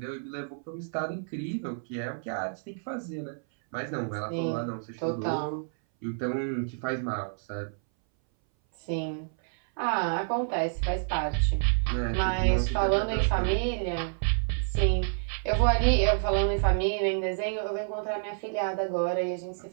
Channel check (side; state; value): left; silent; 59 dB below the other